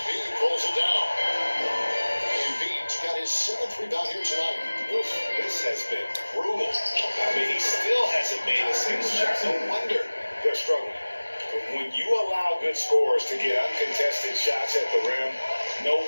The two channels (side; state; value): both; inverted; correlation -1.00